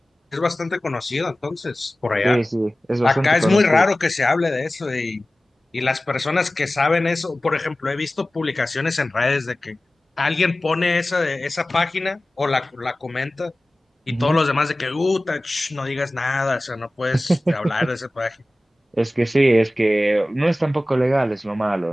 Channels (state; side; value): normal; both; correlation 0.97